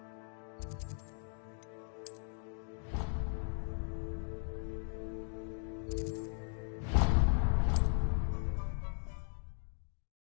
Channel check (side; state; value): right; silent; 52 dB below the other